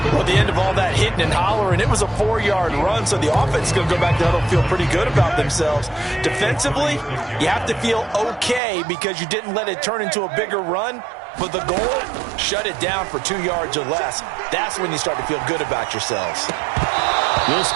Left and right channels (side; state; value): left; drops out; at 8.6 s